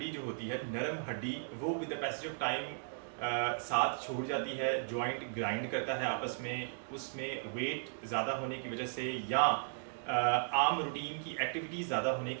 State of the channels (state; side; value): silent; left; digital silence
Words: जो होती है, नरम हड्डी, वो with the passage of time साथ छोड़ जाती है, जॉइंट ग्राइंड करता है आपस में, उसमें वेट ज़्यादा होने की वजह से या आम रूटीन की एक्टिविटीज़ ज़्यादा होने